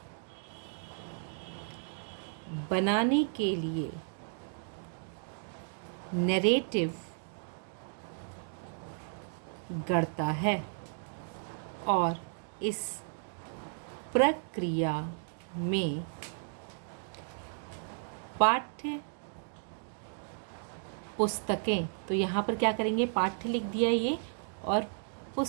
बनाने के लिए नैरेटिव गढ़ता है, और इस प्रक्रिया में पाठ्य पुस्तकें, तो यहाँ पर क्या करेंगे, पाठ्य लिख दिया ये, और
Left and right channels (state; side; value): silent; left; digital silence